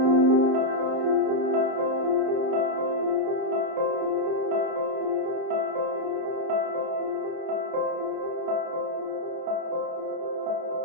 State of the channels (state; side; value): late; left; 30 ms